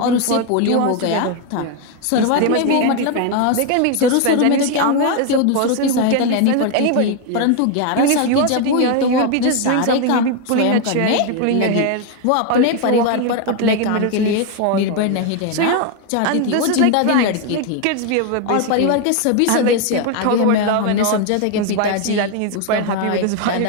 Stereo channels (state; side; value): different; both; correlation 0.01